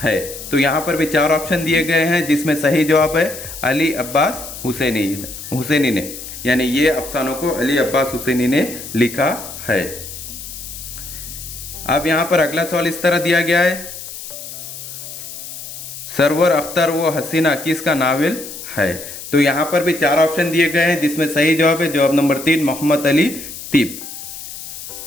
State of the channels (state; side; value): noise; left; hiss, 11 dB below the sound